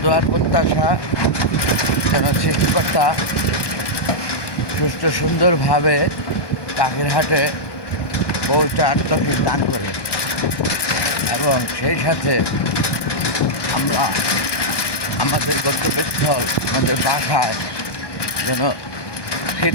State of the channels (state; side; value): late; right; 1.2 ms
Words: দোয়ার প্রত্যাশা যেন সৃষ্টিকর্তা সুস্থ সুন্দরভাবে পাখির হাটে পৌঁছার তৌফিক দান করে এবং সেই সাথে আমরা আমাদের গন্তব্যস্থল আমাদের বাসায় যেন